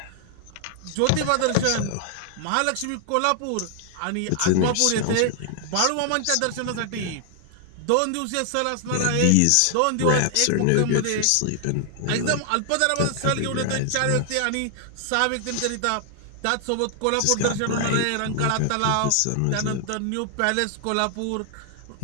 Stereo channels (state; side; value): different; both; correlation 0.00